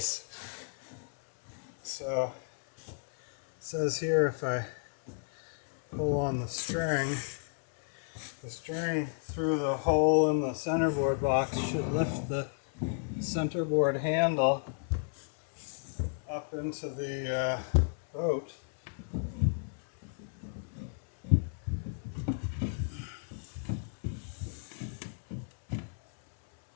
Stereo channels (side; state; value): right; silent; 56 dB below the other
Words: So it says here if I pull on the string through the hole in the centerboard box should lift the centerboard handle up into the boat.